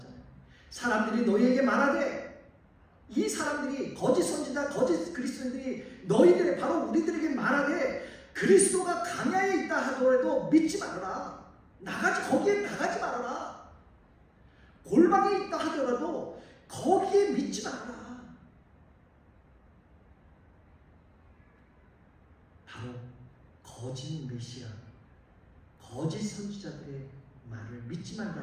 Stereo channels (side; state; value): both; identical; correlation 1.00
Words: 사람들이 너희에게 말하되, 이 사람들이 거짓 선지자, 거짓 그리스도인들이 너희들 바로 우리들에게 말하되 그리스도가 광야에 있다 하더라도 믿지 말아라. 거기에 나가지 말아라. 골방에 있다 하더라도 거기에 믿지 말아라. 바로 거짓 메시아, 거짓 선지자들의 말을 믿지